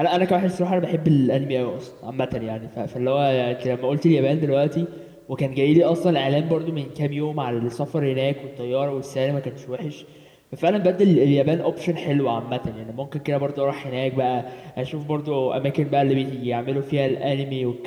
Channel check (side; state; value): both; identical; correlation 1.00